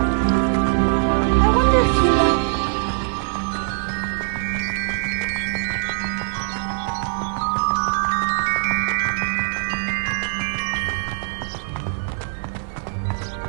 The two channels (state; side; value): silent; left; digital silence